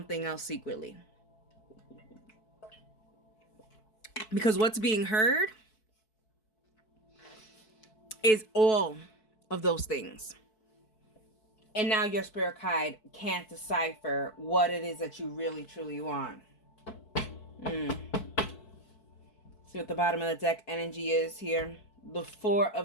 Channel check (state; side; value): late; right; 4.6 ms